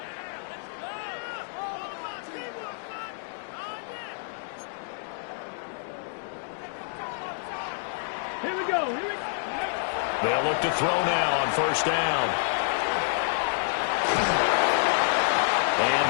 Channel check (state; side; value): silent; right; digital silence